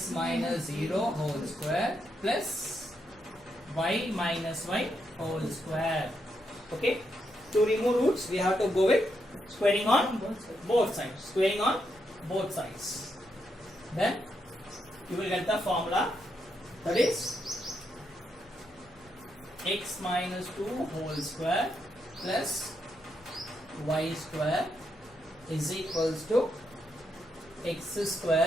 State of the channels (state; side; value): noise; left; hum, 28 dB below the sound